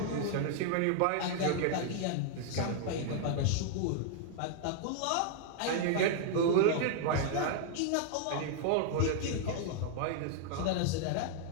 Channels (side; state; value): both; different; correlation 0.00